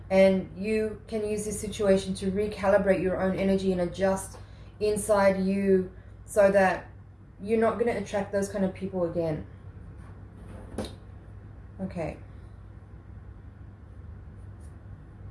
And you can use this situation to recalibrate your own energy and adjust inside you so that you're not going to attract those kind of people again. Okay.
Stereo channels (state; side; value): identical; both; correlation 1.00